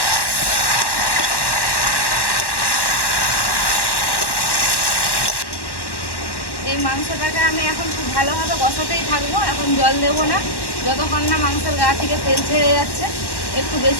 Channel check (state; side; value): late; right; 1.1 ms